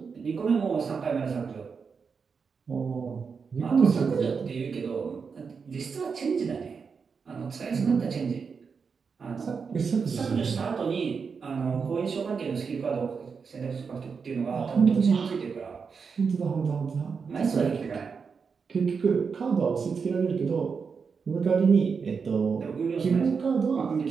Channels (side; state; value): left; quieter; 5.6 dB